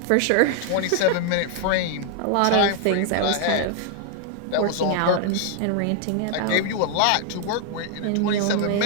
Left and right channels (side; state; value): both; different; correlation 0.00